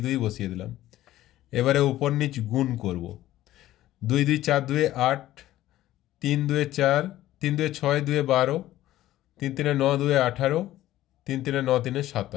2 বসিয়ে দিলাম। এবারে উপর নিচ গুণ করব, 2 2 4 2 8, 3 2 4, 3 2 6 2 12, 3 3 9 2 18, 3 3 9 3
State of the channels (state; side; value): quieter; right; 14.5 dB